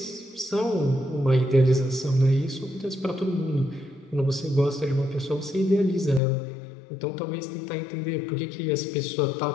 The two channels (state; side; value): drops out; right; at 6.2 s